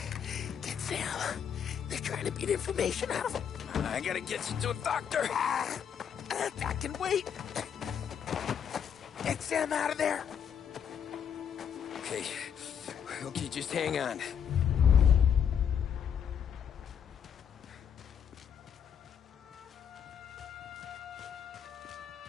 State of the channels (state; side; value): quieter; right; 8.1 dB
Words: Get Sam. They're trying to beat information out of him. I gotta get you to a doctor. I can wait. Get Sam out of there. Okay, just hang on.